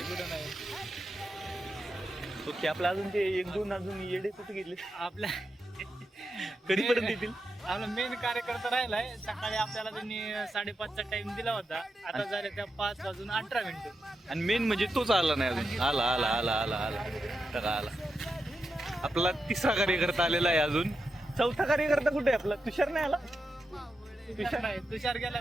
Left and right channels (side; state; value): both; normal; correlation 0.87